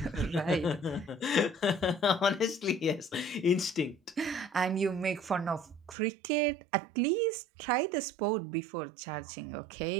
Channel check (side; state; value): left; drops out; at 6.0 s